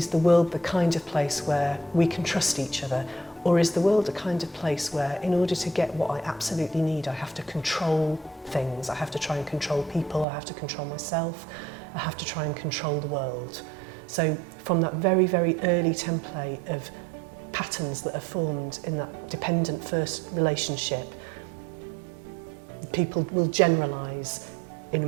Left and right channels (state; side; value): drops out; left; at 10.2 s